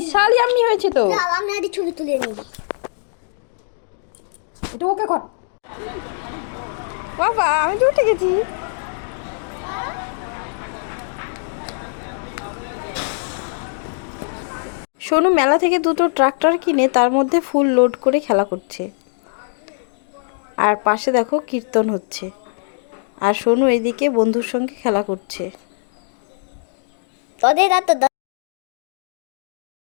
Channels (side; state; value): right; silent; 65 dB below the other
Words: ইয়াম্মি হয়েছে তো। আমি একটা ছবি তুলে নিই। এটা ওকে কর বাবা, আমি তো উঠে গেছি। সোনু মেলা থেকে দুটো ট্রাক্টর কিনে তার মধ্যে ফুল লোড করে খেলা করছে। আর পাশে দেখো কীর্তন হচ্ছে, আর সোনু এদিকে বন্ধুর সঙ্গে খেলা করছে। তোদের তো